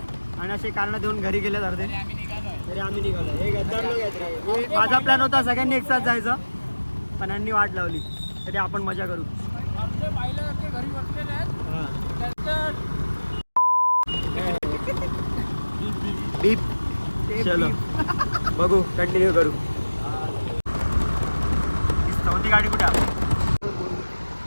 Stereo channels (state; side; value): inverted; both; correlation -1.00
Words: आणि असे कारणं देऊन घरी गेलेत अर्धे. तरी आम्ही निघालो. हे गद्दार लोक आहेत. माझा प्लॅन होता सगळ्यांनी एकसाथ जायचं पण यांनी वाट लावली. तरी आपण मजा करू. बीप. चलो बघू, कंटिन्यू करू. चौथी गाडी कुठे?